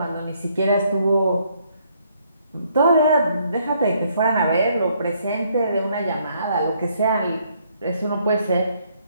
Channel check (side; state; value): both; inverted; correlation -0.69